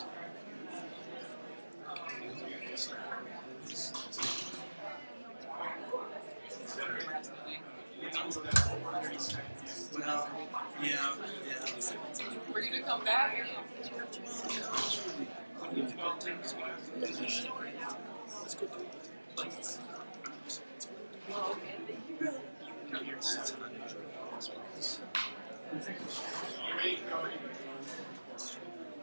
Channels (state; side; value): inverted; both; correlation -1.00